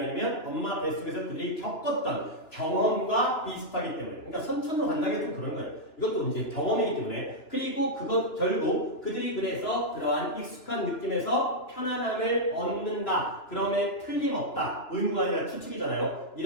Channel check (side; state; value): right; late; 2.9 ms